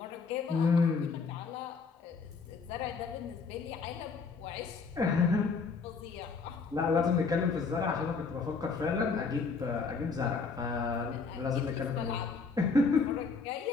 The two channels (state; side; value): quieter; right; 4.8 dB